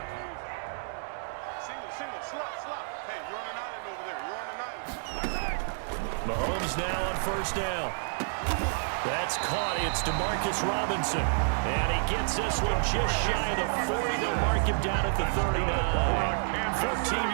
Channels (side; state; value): left; silent; digital silence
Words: Mahomes now on first down. That's caught. It's Demarcus Robinson. And he gets this one just shy of the 40. They'll mark him down at the 39. 14